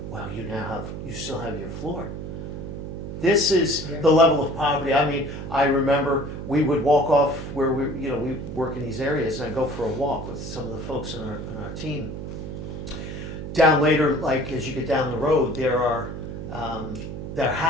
well, you still have your floor. This is the level of poverty. I mean, I remember we would walk off where we work in these areas, and I go for a walk with some of the folks on our team down later, like as you get down the road, there are their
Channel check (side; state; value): right; noise; hum, 7 dB below the sound